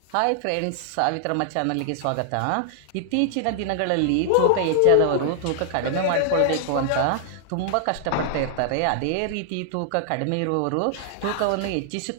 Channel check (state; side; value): different; both; correlation 0.00